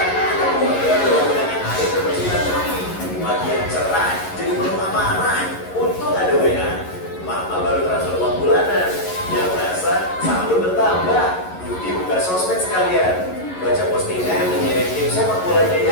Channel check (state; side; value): late; right; 11 ms